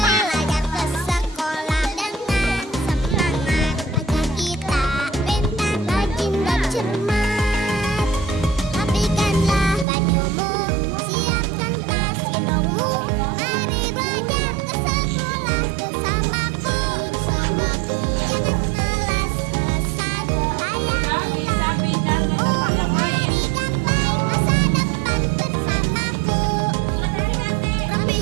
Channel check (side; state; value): left; drops out; at 9.9 s